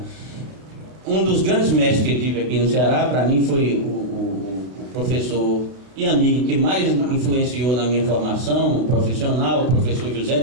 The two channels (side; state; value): left; late; 31 ms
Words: Um dos grandes mestres que eu tive aqui no Ceará, para mim, foi o professor e amigo que mais influenciou na minha formação profissional, o professor José